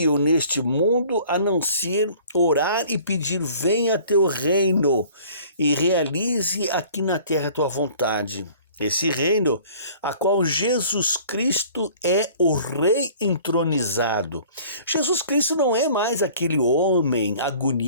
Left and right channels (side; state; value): both; inverted; correlation -0.50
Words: neste mundo a não ser orar e pedir: venha teu reino e realize aqui na terra a tua vontade. Esse reino, a qual Jesus Cristo é o Rei entronizado. Jesus Cristo não é mais aquele homem